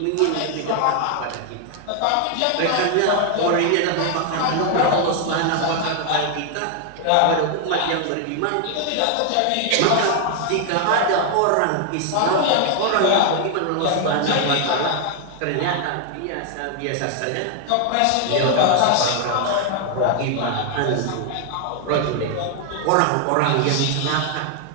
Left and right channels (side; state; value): both; different; correlation 0.00